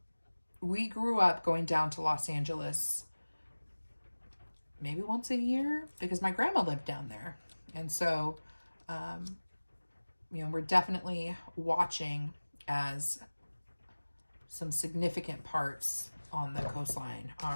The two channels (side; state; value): both; inverted; correlation -1.00